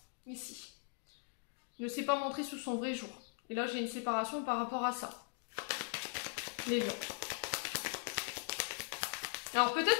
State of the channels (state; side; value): silent; right; 51 dB below the other